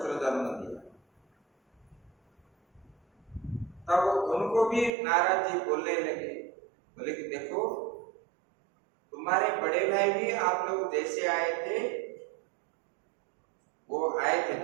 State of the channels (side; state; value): left; drops out; at 4.9 s